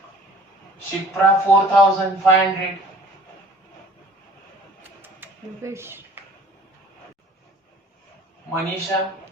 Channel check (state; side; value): normal; both; correlation 0.50